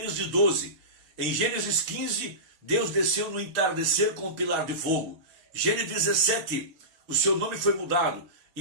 12, em Gênesis 15, Deus desceu no entardecer com um pilar de fogo. Gênesis 17, o seu nome foi mudado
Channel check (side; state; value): left; late; 6.3 ms